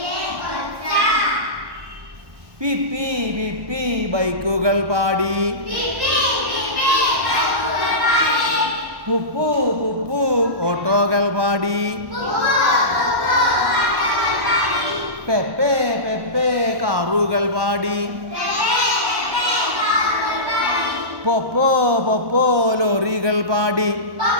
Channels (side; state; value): left; late; 1.1 ms